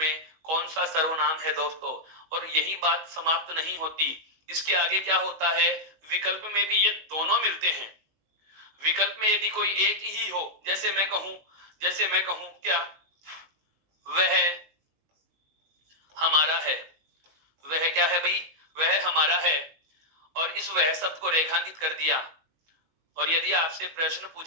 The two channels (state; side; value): late; left; 19 ms